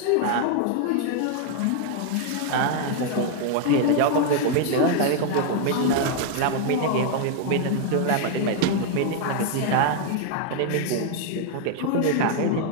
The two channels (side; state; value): both; different; correlation 0.00